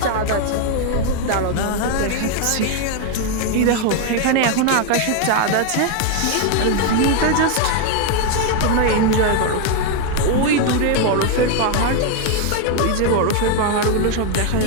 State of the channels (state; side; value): different; both; correlation 0.01